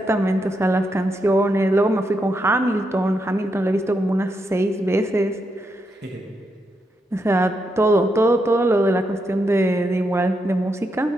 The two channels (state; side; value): normal; both; correlation 0.82